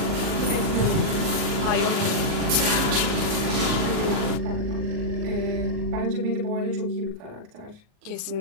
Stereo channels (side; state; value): left; late; 38 ms